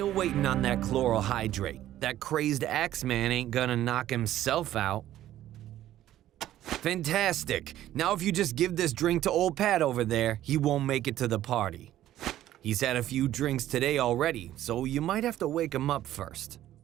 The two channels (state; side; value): quieter; left; 13.1 dB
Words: waiting on that chloral hydrate. That crazed Axeman ain't gonna knock himself out. Fantastic. Now if you just give this drink to old Pat over there, he won't make it to the party. He's had a few drinks today already, so you might have to wake him up first.